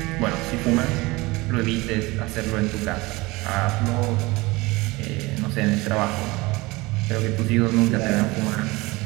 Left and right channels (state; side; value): quieter; left; 22.4 dB